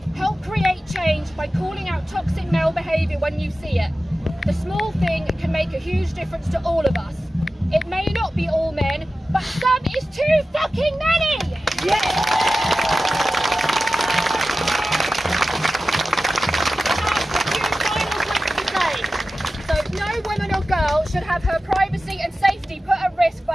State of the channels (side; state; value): both; normal; correlation 0.94